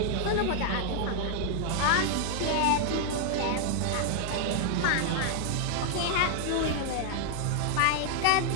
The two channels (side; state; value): both; different; correlation 0.00